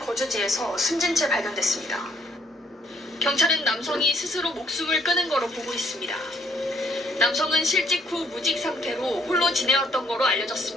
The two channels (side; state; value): both; normal; correlation 0.66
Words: 숨진 채 발견됐습니다. 경찰은 남성이 스스로 목숨을 끊은 거로 보고 있습니다. 남성은 실직 후 무직 상태로 홀로 지내왔던 거로